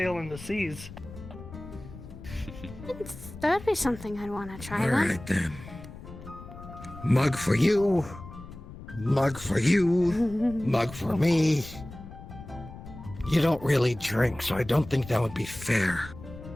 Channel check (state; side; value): noise; left; rumble, 15 dB below the sound